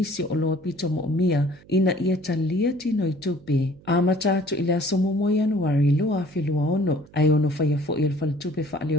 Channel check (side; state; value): right; noise; hum, 25 dB below the sound